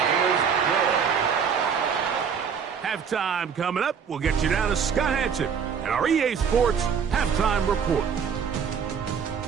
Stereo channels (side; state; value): left; quieter; 6.9 dB